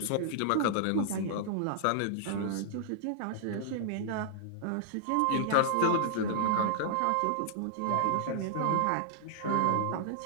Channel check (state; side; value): different; both; correlation -0.01